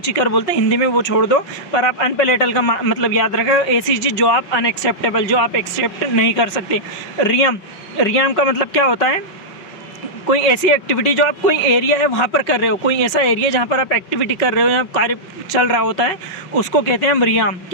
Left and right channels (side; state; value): right; late; 5.5 ms